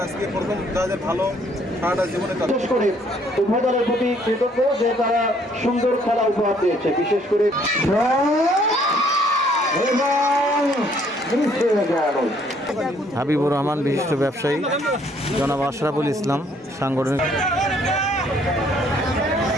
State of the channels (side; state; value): both; normal; correlation 0.64